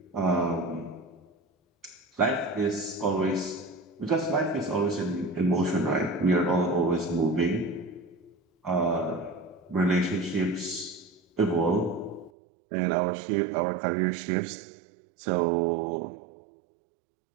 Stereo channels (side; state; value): left; drops out; at 12.3 s